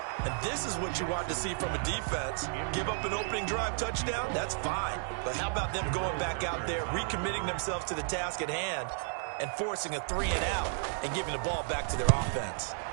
And this is what you want to see from a defense. Give up an opening drive touchdown, that's fine. But how about them going back out there, recommitting themselves to the task at hand, and forcing a 3-and-out and giving the ball back to their offense.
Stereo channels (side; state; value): left; silent; 56 dB below the other